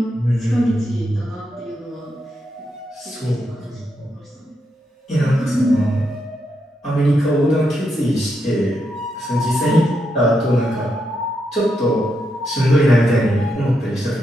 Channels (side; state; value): both; normal; correlation 0.82